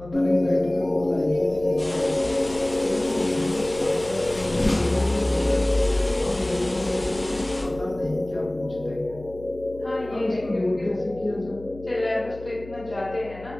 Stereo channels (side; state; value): left; noise; hum, 17 dB below the sound